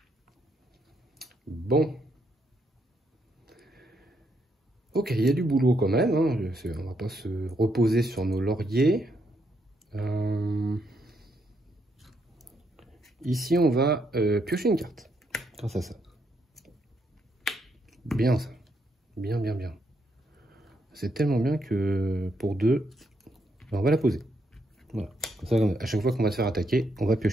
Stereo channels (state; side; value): normal; both; correlation 0.77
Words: Bon. Ok, il y a du boulot quand même. Hein. On va pas se reposer sur nos lauriers. Ici, on va piocher une carte. Grâce à ça. Bien ça. Bien, bien, bien. C'est tellement bien que pour 2, on va la poser. Voilà. Comme ça, à chaque fois qu'on va se faire attaquer, on va